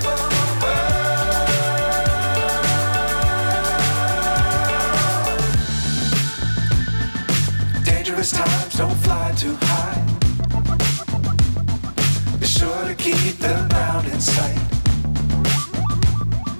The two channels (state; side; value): inverted; both; correlation -1.00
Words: Times don't fly too high. Be sure to keep the ground in sight.